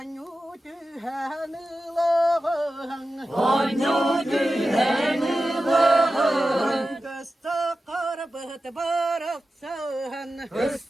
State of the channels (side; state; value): both; normal; correlation 0.93